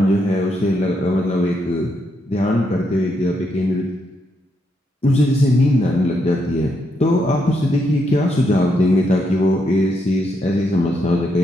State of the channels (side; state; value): both; normal; correlation 0.79